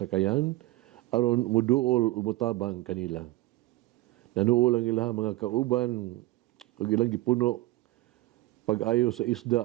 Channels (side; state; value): left; quieter; 18.3 dB